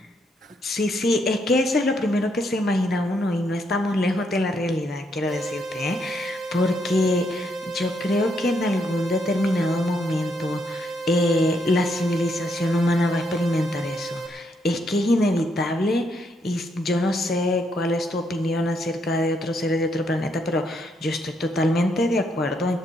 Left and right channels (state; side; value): normal; both; correlation 0.75